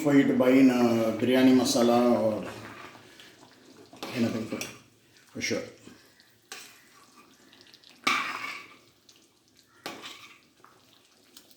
for you to buy in a biryani masala or anything for sure.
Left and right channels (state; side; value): identical; both; correlation 1.00